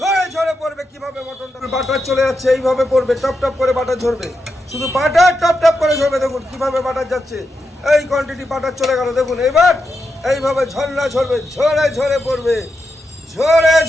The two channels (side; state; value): both; normal; correlation 0.86